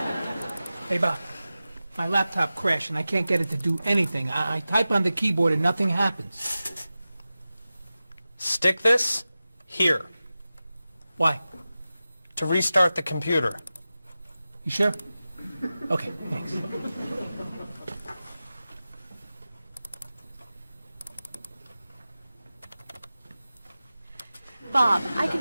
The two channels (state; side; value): inverted; both; correlation -0.95